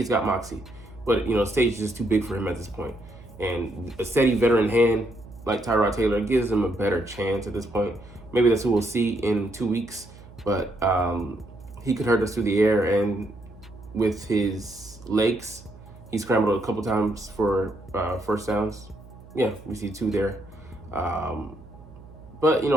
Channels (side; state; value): right; noise; hum, 20 dB below the sound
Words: got moxie, but the stage is just too big for him at this point. And a steady veteran hand like Tyrod Taylor gives him a better chance at this point. Maybe that's who we'll see in 2 weeks, but he could hurt us through the air, and with his legs, he scrambled a couple times for first downs. Yeah, we see 2 there. But